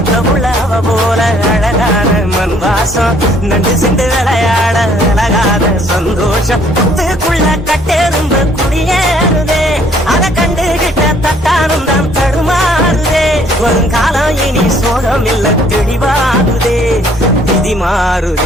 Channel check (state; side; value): normal; both; correlation 0.62